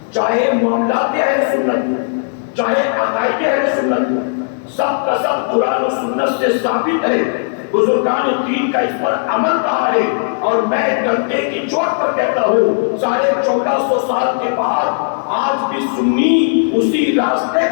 چاہے معاملات اہل سنت، چاہے عقائد اہل سنت، سب کا سب قرآن و سنت سے ثابت ہے، بزرگان دین کا اس پر عمل رہا ہے، اور میں ڈنڈے کی چوٹ پر کہتا ہوں 1450 سال کے بعد آج بھی سنی اسی راستے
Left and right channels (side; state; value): right; silent; 61 dB below the other